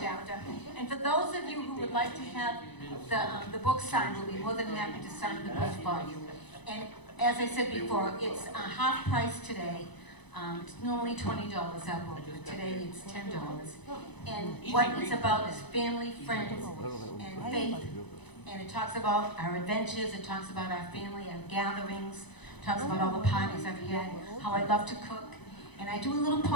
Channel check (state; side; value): late; right; 1.0 ms